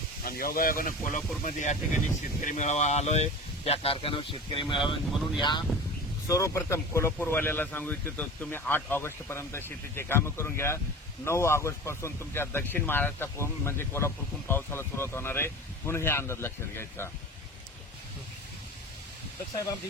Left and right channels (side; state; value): both; normal; correlation 0.35